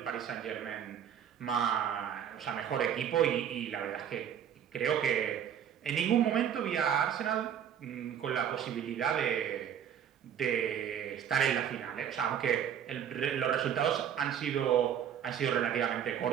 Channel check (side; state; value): left; quieter; 9.0 dB